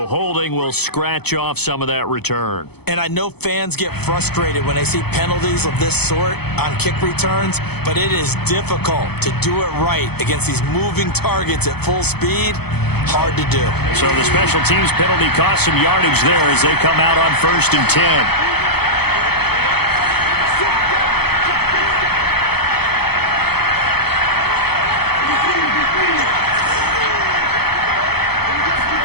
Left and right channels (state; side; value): late; right; 0.97 ms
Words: holding will scratch off some of that return. And I know fans get frustrated when they see penalties of this sort on kick returns, but it is difficult to do it right against these moving targets at full speed. Hard to do. So the special teams penalty cost some yardage there as they come out on 1st and 10.